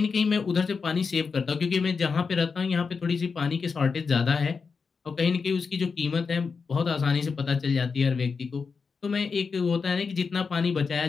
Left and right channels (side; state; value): right; quieter; 5.2 dB